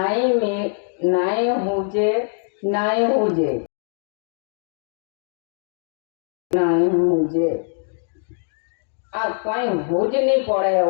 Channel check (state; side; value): silent; right; digital silence